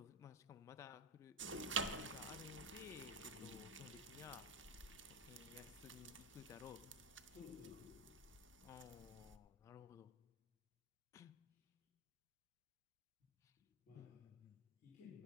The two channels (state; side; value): normal; both; correlation 0.10